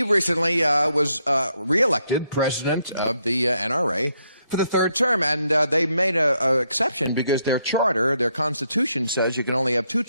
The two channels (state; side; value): inverted; both; correlation -0.77